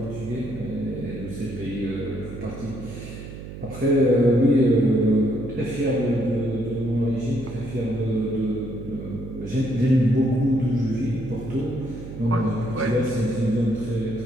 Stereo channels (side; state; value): right; noise; hum, 11 dB below the sound